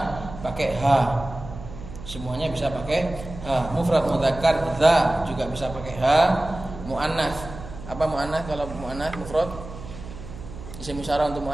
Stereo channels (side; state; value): right; noise; hum, 13 dB below the sound